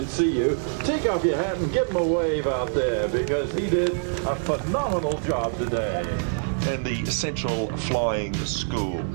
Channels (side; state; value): left; silent; digital silence